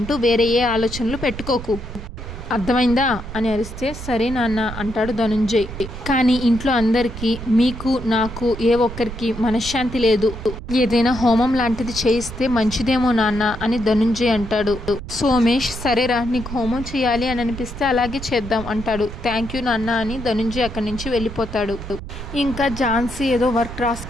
వేరే ఏ ఆలోచనలు పెట్టుకోకు, అర్థమైందా అని అరిస్తే సరే నాన్న అంటాడు ధనుంజయ్. కానీ ఇంట్లో అందరికీ, మీకు నాకు ఏ ఒక్కరికి మనశ్శాంతి లేదు. ఏదైనా హోమం లాంటిది చేయిస్తే మంచిదేమో నాన్న అని ధనుంజయ్ అంటాడు. సోమేష్ సరేరా, నీకు హోమం చేయాలి అని అనిపిస్తే అలాగే చేద్దాం అంటాడు. థ్యాంక్ యూ నాన్న అని ధనుంజయ్ అక్కడి నుంచి వెళ్ళిపోతాడు. ఇంకా ఝాన్సీ ఏదో వర్క్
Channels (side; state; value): right; noise; rumble, 10 dB below the sound